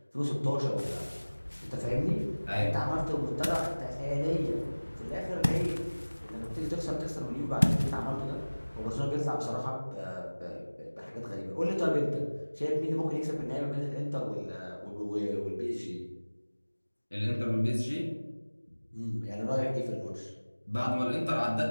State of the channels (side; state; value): both; inverted; correlation -1.00